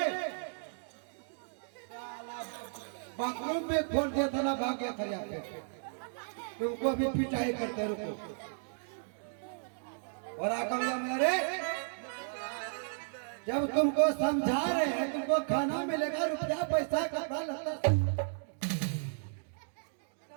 बाथरूम में खोल दिया था ना, भाग गया था यहाँ पे। तुमको अभी पिटाई करते रुको। और आकर मेरे जब तुमको समझा रहे हैं तुमको खाना मिलेगा, रुपया पैसा कपड़ा लगता।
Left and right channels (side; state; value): left; silent; digital silence